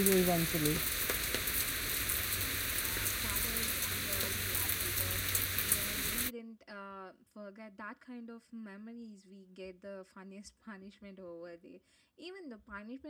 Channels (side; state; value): both; identical; correlation 1.00